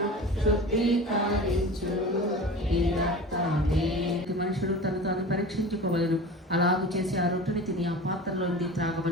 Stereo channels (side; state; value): both; normal; correlation 0.35